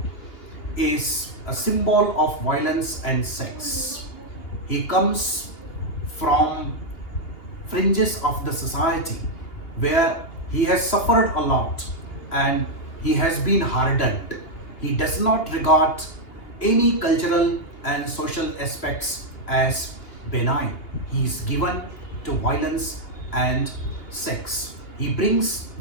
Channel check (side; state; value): right; late; 2.8 ms